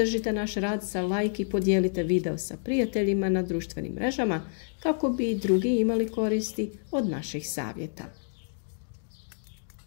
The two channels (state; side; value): silent; right; digital silence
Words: naš rad sa like i podijelite video sa prijateljima na društvenim mrežama kako bi i drugi imali koristi od naših savjeta.